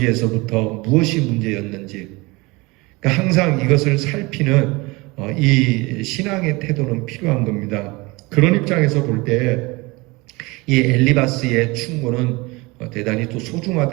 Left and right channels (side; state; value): left; quieter; 24.2 dB